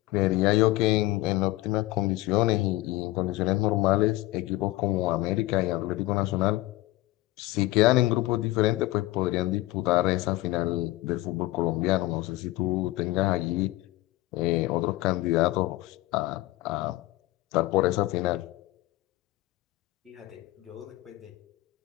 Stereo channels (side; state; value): right; quieter; 18.4 dB